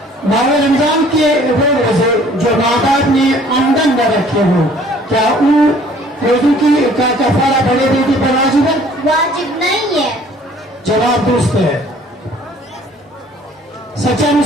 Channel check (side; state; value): both; normal; correlation 0.55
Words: ماہ رمضان کے وہ روزے جو ماں باپ نے آمدن نہ رکھے ہوں کیا ان روزوں کی کا کفارہ بڑے بیٹی پر واجب ہے؟ واجب نہیں ہے. جواب درست ہے. سچا